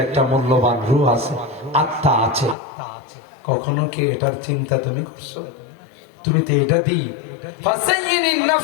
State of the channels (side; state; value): right; drops out; at 2.6 s